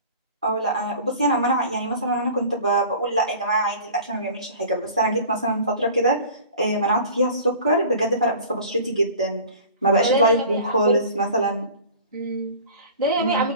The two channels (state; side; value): inverted; both; correlation -0.42